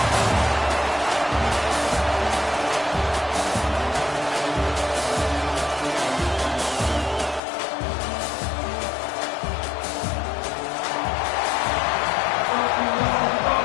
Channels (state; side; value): drops out; right; at 7.4 s